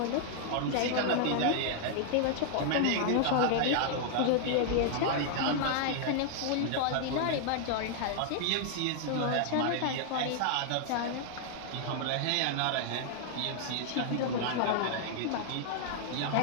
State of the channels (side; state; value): both; different; correlation 0.00